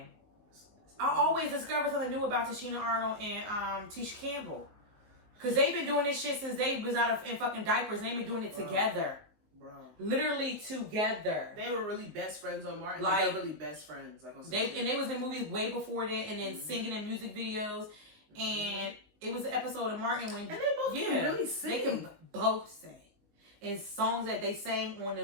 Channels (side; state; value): left; late; 19 ms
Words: I always discover something new about Tashina Arnold and Tisha Campbell. Because they've been doing this shit since they was in fucking diapers. They've been doing it together. Bro. Literally together. They were really best friends on Martin. Like, they were really best friends. Like on they was in movies way before that, and then singing in music videos. And it was an episode of Martin when... And they both can really sing. They can both sing. And songs that they sang on the